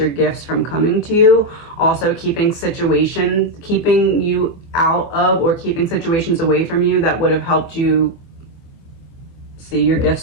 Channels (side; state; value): right; late; 24 ms